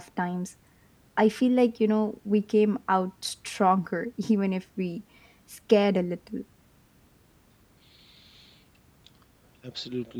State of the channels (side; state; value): both; identical; correlation 1.00